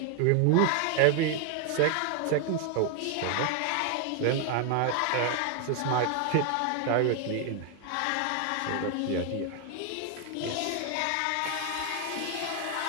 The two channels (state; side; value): different; both; correlation 0.00